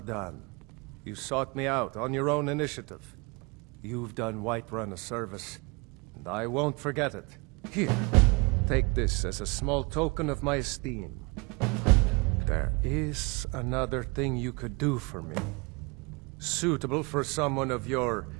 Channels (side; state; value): left; quieter; 28.3 dB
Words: done. You sought me out on your own initiative. You've done Whiterun a service, and I won't forget it. Here, take this as a small token of my esteem. There is another thing you could do for me. Suitable for someone of your